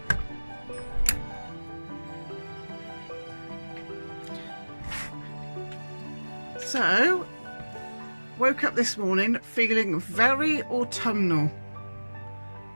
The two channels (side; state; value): both; inverted; correlation -1.00